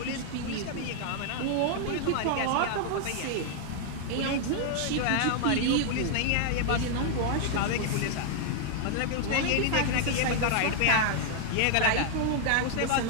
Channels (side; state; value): both; different; correlation 0.00